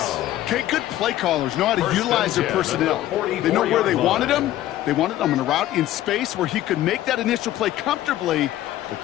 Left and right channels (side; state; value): right; quieter; 13.8 dB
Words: Okay, good play callers know how to utilize their personnel. They know where they wanted them. They wanted them on a route in space where he could make that initial play comfortably, but